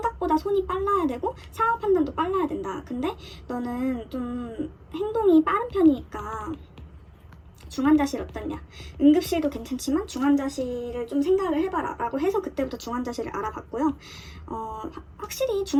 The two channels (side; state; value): both; identical; correlation 1.00